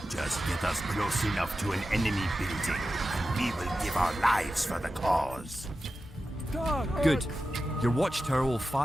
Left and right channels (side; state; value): both; normal; correlation 0.92